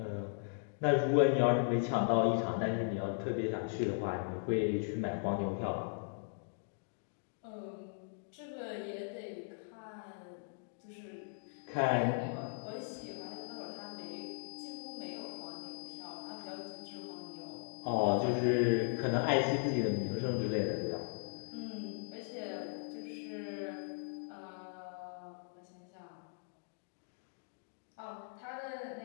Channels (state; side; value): silent; right; digital silence